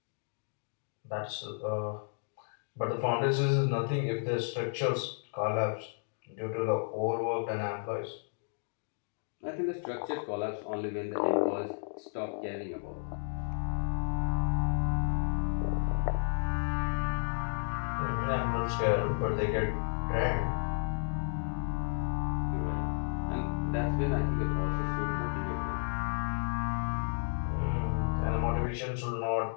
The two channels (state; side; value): silent; right; 56 dB below the other